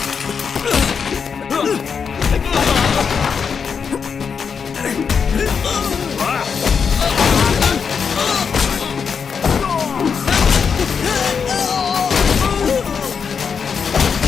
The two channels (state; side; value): quieter; right; 6.3 dB